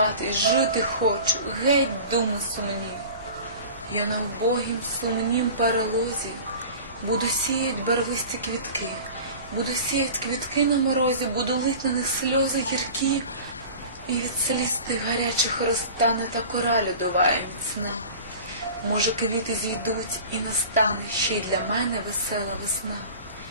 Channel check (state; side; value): inverted; both; correlation -0.38